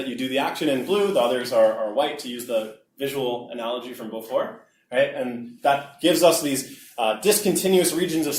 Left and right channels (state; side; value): identical; both; correlation 1.00